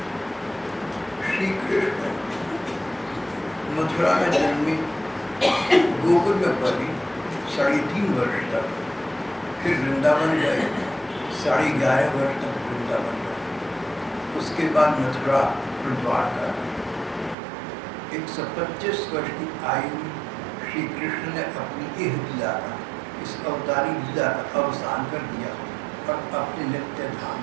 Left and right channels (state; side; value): drops out; left; at 17.4 s